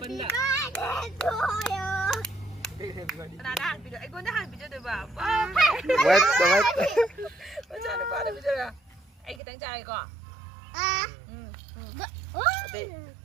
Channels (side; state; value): left; drops out; at 9.4 s